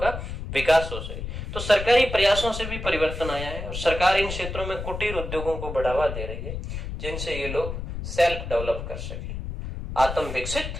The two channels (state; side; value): noise; left; rumble, 7 dB below the sound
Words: विकास हो सके। तो सरकारी प्रयासों से भी परिवर्तन आया है और सरकार इन क्षेत्रों में कुटीर उद्योगों को बढ़ावा दे रही है, जिनसे ये लोग सेल्फ डेवलप कर सके, आत्म